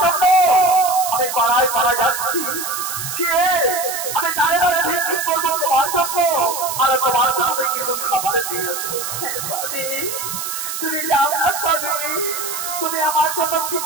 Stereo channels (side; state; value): right; noise; hiss, 5 dB below the sound